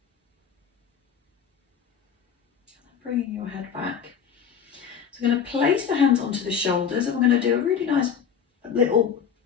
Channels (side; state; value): right; quieter; 7.5 dB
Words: Bringing your head back. So I'm going to place the hands onto the shoulders and we're going to do a really nice little